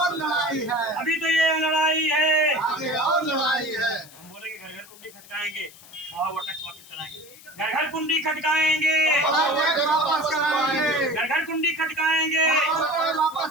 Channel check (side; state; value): left; noise; hiss, 21 dB below the sound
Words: लड़ाई है, अभी तो ये लड़ाई है, आगे और लड़ाई है। हम बोले कि घर घर कुंडी खटकाएंगे, वो टैक्स वापस कराएंगे, घर घर कुंडी खटकाएंगे, वापस कराएंगे, घर घर कुंडी खटकाएंगे,